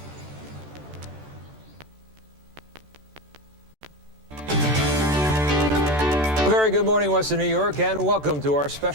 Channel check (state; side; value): late; left; 14 ms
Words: Very good morning, Western New York, and welcome to our